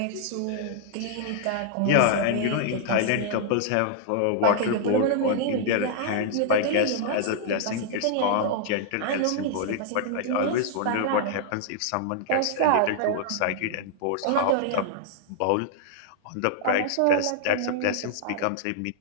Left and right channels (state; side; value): different; both; correlation -0.01